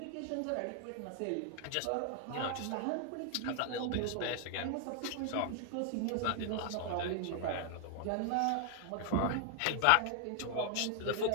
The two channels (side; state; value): both; different; correlation 0.00